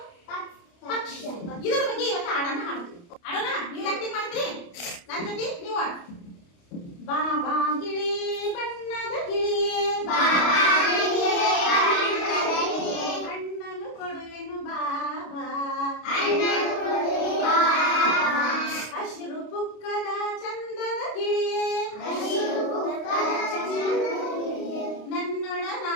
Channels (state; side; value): late; right; 29 ms